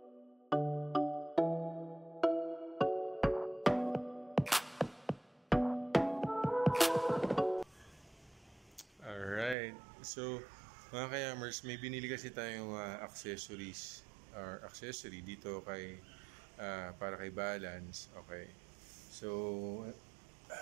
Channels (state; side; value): drops out; left; at 9.6 s